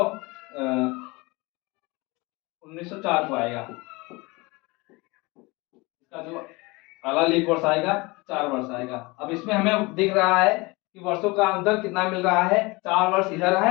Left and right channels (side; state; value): right; quieter; 24.6 dB